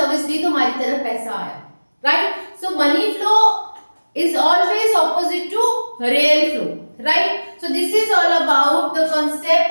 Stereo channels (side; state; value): both; inverted; correlation -1.00